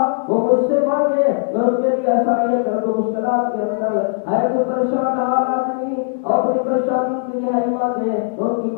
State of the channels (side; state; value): right; silent; 67 dB below the other